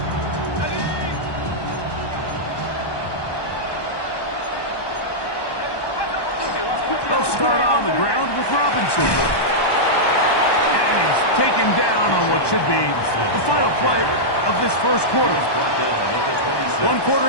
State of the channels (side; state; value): right; late; 1.1 ms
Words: Start on the ground with Robinson. And he's taken down on what should be the final play of this first quarter. 1